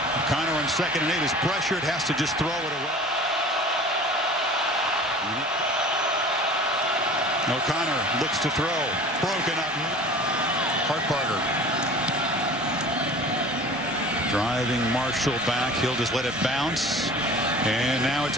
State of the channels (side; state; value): both; normal; correlation 0.42